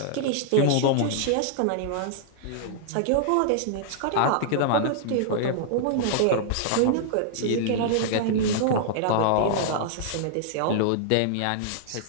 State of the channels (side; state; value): both; different; correlation -0.01